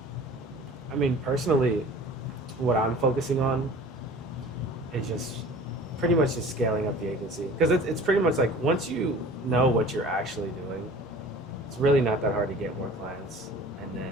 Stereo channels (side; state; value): both; normal; correlation 0.44